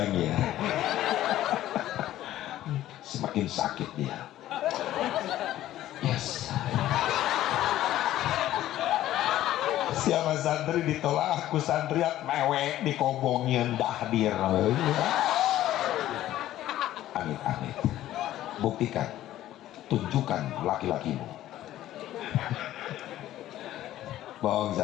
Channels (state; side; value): quieter; right; 13.7 dB